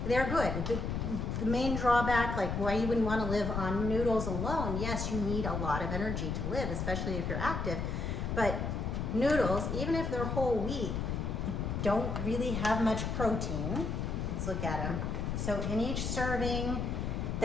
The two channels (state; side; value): noise; left; rumble, 2 dB below the sound